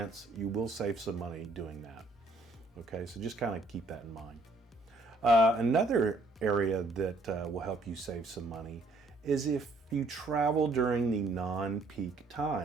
you will save some money doing that. Okay, so just kind of keep that in mind. Another area that will help you save some money is if you travel during the non-peak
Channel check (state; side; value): quieter; left; 3.2 dB